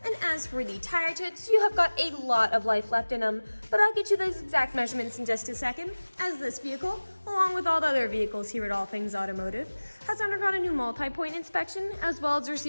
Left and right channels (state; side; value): inverted; both; correlation -1.00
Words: And as for the tire treads, you have got a lot of life left in them, but I'll get you those exact measurements in just a second, as this vehicle, along with all the other vehicles here at All Things Automotive, has undergone a new multi-point inspection, as well as